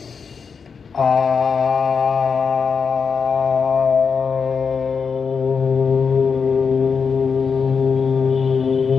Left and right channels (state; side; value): quieter; right; 5.8 dB